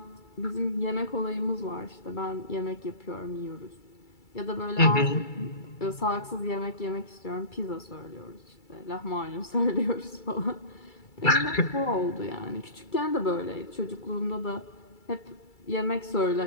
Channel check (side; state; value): right; late; 2.3 ms